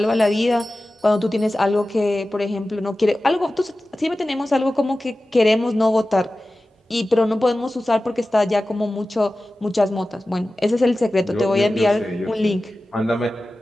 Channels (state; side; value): normal; both; correlation 0.95